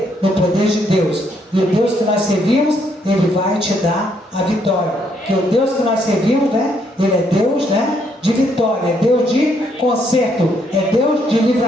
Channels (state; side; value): normal; both; correlation 0.72